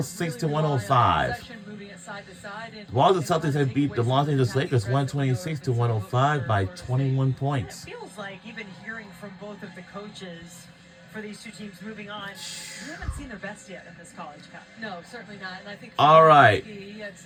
to 105. The Boston Celtics have beat the Los Angeles Lakers 126 to 105 by 21 points. It feels like, even hearing from both of the coaches for these two teams moving on, we haven't seen their best yet in this College Cup. No, certainly not. And I think all right,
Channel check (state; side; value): identical; both; correlation 1.00